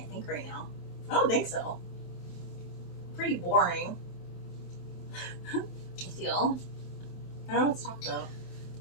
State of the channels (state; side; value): late; right; 23 ms